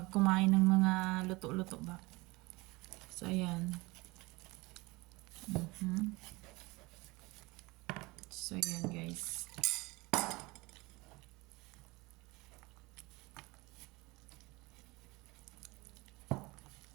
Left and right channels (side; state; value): left; quieter; 23.3 dB